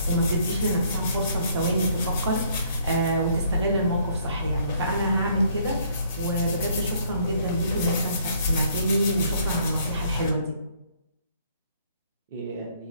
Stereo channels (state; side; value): inverted; both; correlation -0.64